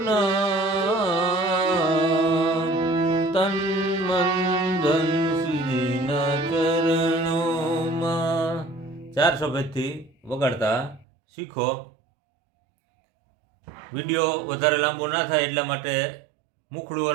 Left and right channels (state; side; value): drops out; left; at 11.1 s